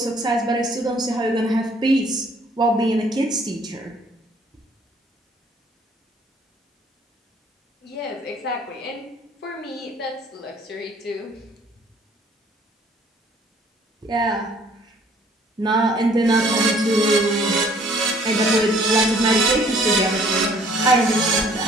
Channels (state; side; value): normal; both; correlation 0.58